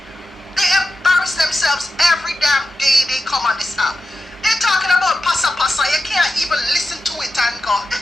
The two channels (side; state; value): both; normal; correlation 0.91